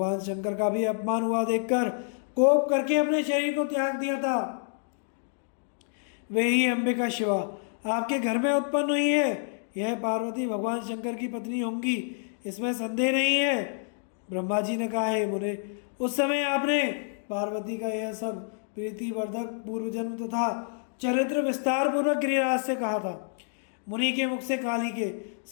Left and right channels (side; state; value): right; silent; digital silence